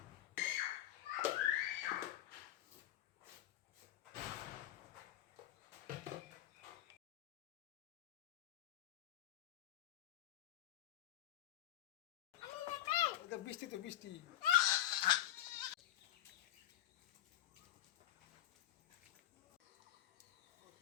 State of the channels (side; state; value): right; quieter; 13.4 dB